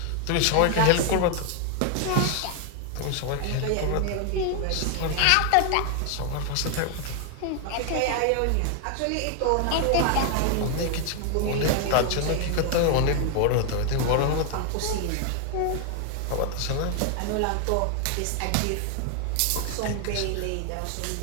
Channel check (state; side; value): different; both; correlation 0.00